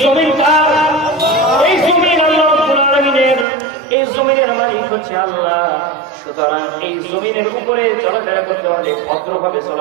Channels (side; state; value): left; drops out; at 3.5 s